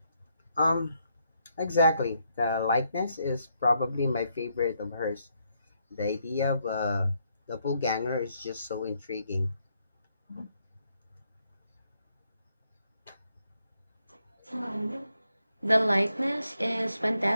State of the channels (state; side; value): inverted; both; correlation -0.77